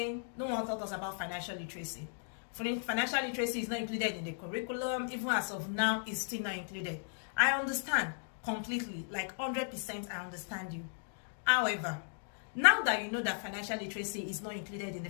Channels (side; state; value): right; silent; digital silence